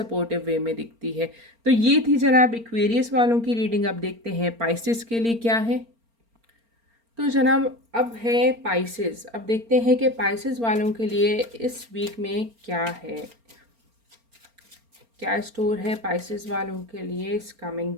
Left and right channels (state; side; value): late; left; 4.3 ms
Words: वे में दिखती है। तो ये थी जनाब एक्वेरियस वालों की रीडिंग। अब देखते हैं पाइसेस के लिए क्या है। तो जनाब अब है पाइसेस। अब देखते हैं कि पाइसेस वालों के लिए इस वीक में क्या है, क्या स्टोर है पाइसेस वालों के लिए इस कमिंग